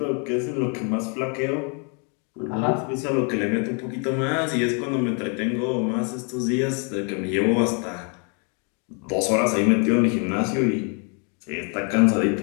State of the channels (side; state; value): right; quieter; 37.6 dB